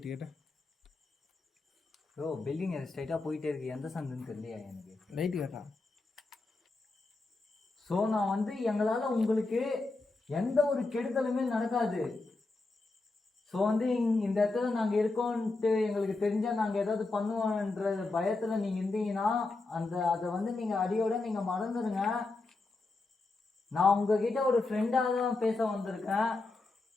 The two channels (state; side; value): quieter; right; 3.5 dB